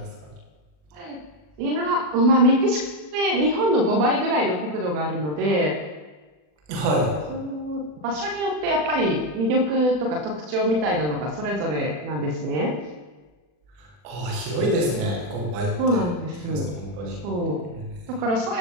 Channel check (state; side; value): late; left; 40 ms